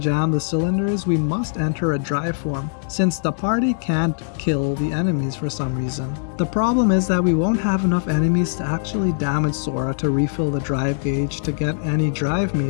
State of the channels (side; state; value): right; silent; digital silence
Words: the cylinders, we must enter a drive form, since the party can't kill the enemies for some reason. The problem is that we won't have enough enemies to actually damage Sora to refill the drive gauge to get any drive